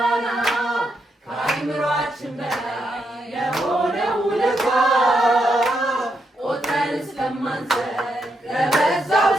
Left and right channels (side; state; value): both; normal; correlation 0.81